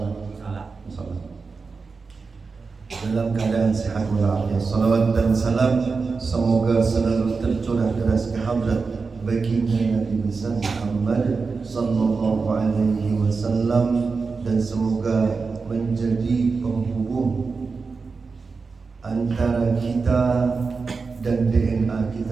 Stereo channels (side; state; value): left; quieter; 4.6 dB